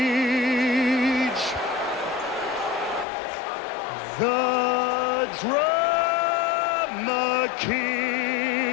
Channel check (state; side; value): drops out; right; at 3.1 s